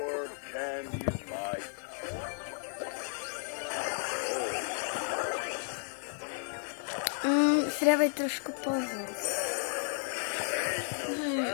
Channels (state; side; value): silent; right; 56 dB below the other